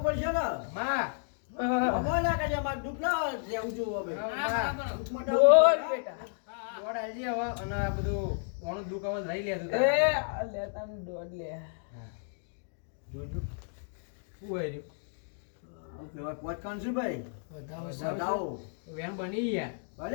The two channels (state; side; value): silent; right; digital silence